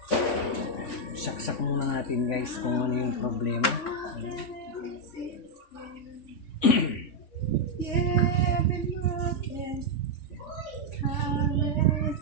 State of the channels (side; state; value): right; late; 3.4 ms